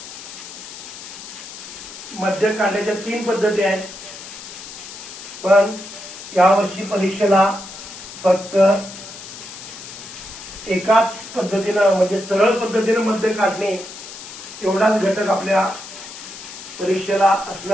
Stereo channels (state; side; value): noise; left; hiss, 13 dB below the sound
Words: मध्यक काढण्याच्या 3 पद्धती आहेत, पण यावर्षी परीक्षेला फक्त एकाच पद्धतीनं म्हणजे सरळ पद्धतीनं मध्य काढणे एवढाच घटक आपल्या परीक्षेला